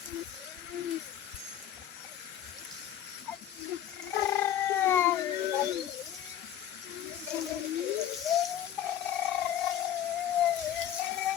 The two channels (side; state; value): right; quieter; 10.7 dB